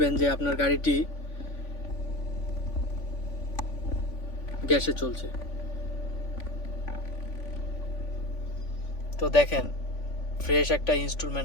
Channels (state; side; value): late; right; 3.5 ms